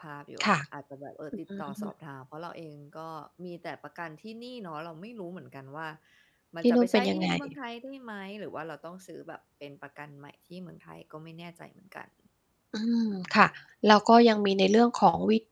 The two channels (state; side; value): identical; both; correlation 1.00